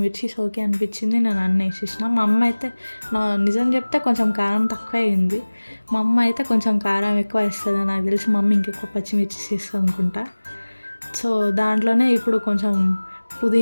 మిర్చీస్ ఓకే అనిపించింది, నేను అన్నీ వేసేసిన. మా అమ్మ అయితే నిజం చెప్తే కొంచెం కారం తక్కువ అయింది. మా అమ్మ అయితే కొంచెం కారం ఎక్కువ వేస్తుంది నాకు తెలిసి. మా అమ్మ ఇంకెక్కువ పచ్చిమిర్చీస్ వేస్తుంది అనుకుంటా. సో దాంట్లోనే ఇప్పుడు కొంచెం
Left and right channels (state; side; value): inverted; both; correlation -1.00